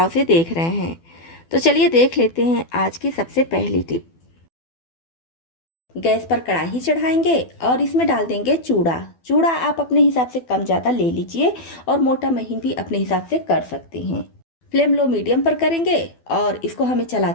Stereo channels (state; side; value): late; right; 12 ms